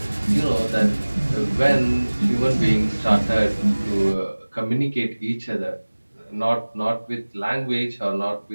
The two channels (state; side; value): inverted; both; correlation -1.00